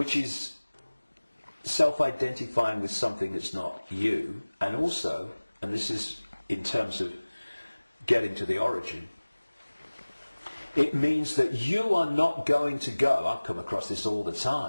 is self-identifying with something that's not you, and also, and this is in terms of getting to the origin, it means that you are not going to go, I've come across this all the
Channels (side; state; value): both; inverted; correlation -1.00